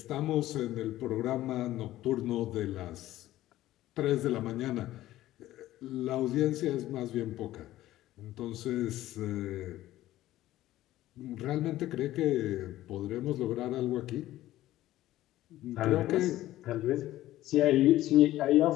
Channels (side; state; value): right; quieter; 14.9 dB